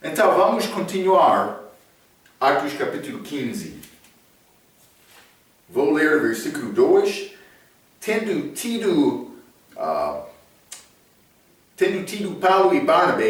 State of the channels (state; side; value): identical; both; correlation 1.00